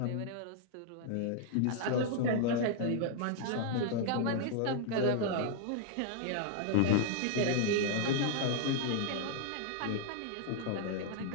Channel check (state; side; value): different; both; correlation 0.00